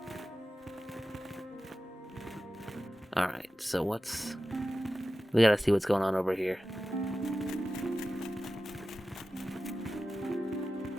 Alright, so we gotta see what's going on over here.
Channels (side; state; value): both; normal; correlation 0.94